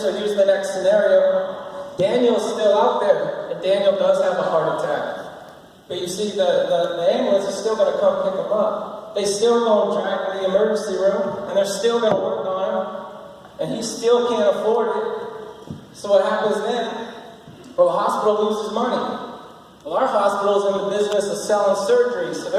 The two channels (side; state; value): both; identical; correlation 1.00